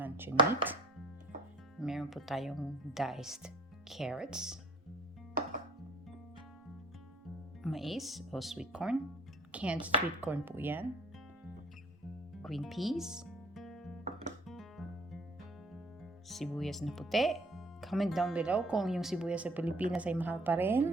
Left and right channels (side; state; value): both; normal; correlation 0.51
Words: meat. Meron po tayong diced carrots. Mais o sweet corn. Canned sweet corn po yan. Green peas. Sibuyas na puti. Comment down below kung yung sibuyas sa Pilipinas ay mahal pa